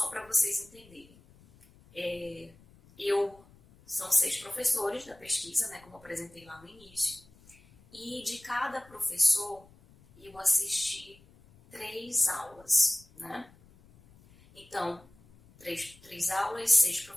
para vocês entenderem, são 6 professores da pesquisa, né, como eu apresentei lá no início, e de cada professor eu assisti 3 aulas, né? Então, 3 aulas, 6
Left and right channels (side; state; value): left; noise; rumble, 26 dB below the sound